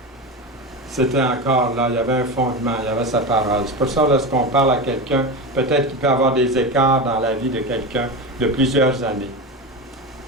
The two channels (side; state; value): both; normal; correlation 0.22